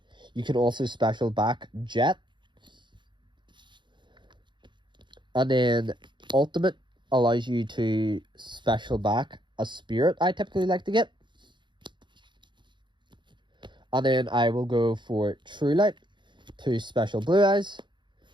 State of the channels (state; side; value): late; left; 0.23 ms